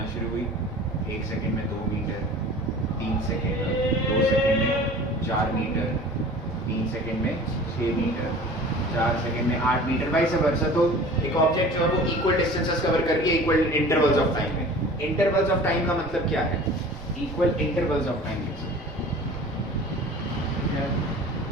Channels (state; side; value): normal; both; correlation 0.42